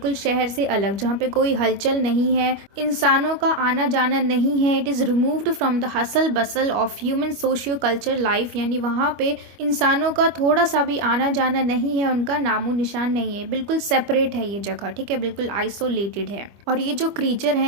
शहर से अलग, जहाँ पे कोई हलचल नहीं है, इंसानों का आना जाना नहीं है। It is removed from the hustle bustle of human socio culture life, यानी वहाँ पे इंसानों का थोड़ा सा भी आना जाना नहीं है, उनका नामो निशान नहीं है, बिल्कुल सेपरेट है ये जगह। ठीक है, बिल्कुल आइसोलेटेड है। और ये जो क्रीचर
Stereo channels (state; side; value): late; left; 25 ms